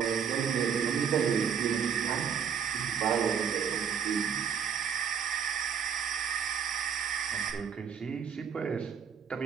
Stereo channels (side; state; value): left; quieter; 7.4 dB